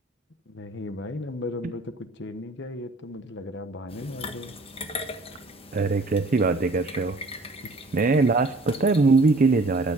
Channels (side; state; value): left; quieter; 3.0 dB